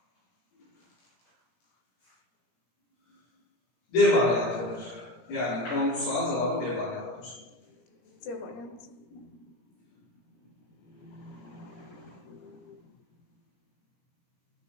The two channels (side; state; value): right; late; 17 ms